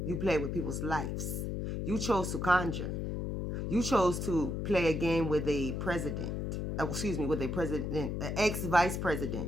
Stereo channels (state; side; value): noise; left; hum, 2 dB below the sound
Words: you play with people's lives. You chose to conjure. You chose to play a game with a president. With a president, an ex-vice